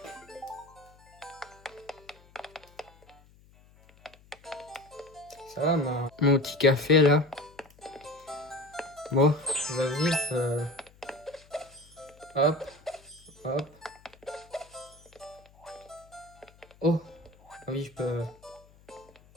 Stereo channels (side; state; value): left; noise; hum, 27 dB below the sound